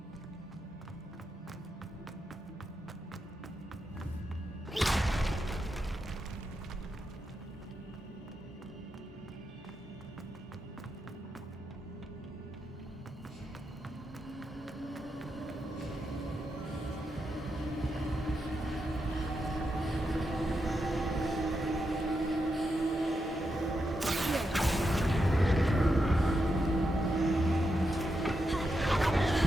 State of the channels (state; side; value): normal; both; correlation 0.85